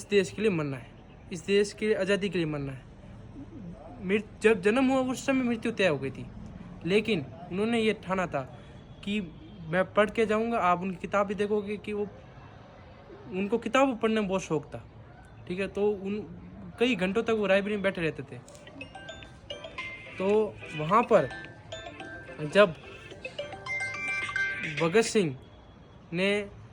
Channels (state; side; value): identical; both; correlation 1.00